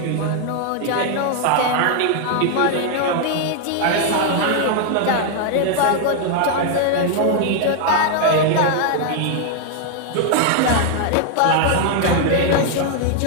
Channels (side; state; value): both; different; correlation 0.00